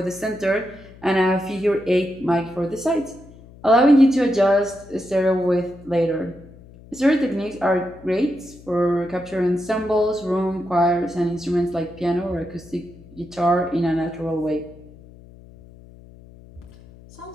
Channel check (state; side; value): noise; left; hum, 21 dB below the sound